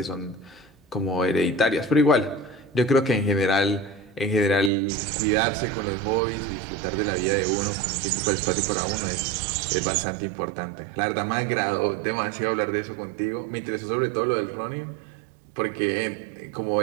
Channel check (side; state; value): left; drops out; at 4.7 s